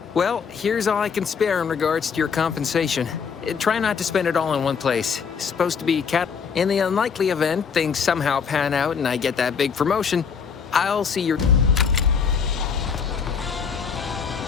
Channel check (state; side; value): quieter; right; 6.3 dB